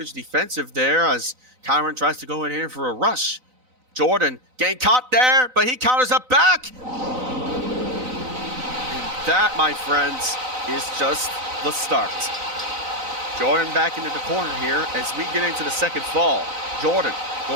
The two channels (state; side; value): late; left; 3.9 ms